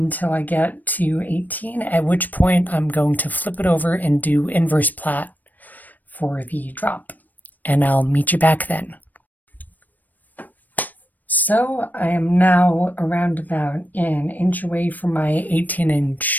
I get to 18, at which point I'm going to flip it over and do inverse plait for the drop. And I'll meet you back then. So I am now around about an inch away from my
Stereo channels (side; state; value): right; late; 0.086 ms